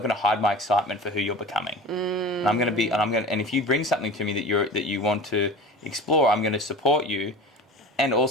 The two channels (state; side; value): normal; both; correlation 0.35